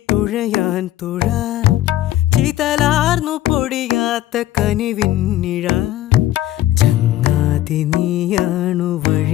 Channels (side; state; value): right; quieter; 13.9 dB